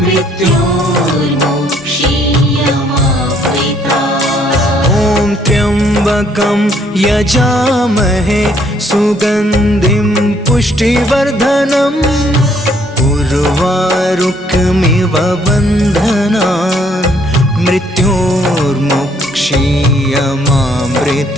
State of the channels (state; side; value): normal; both; correlation 0.66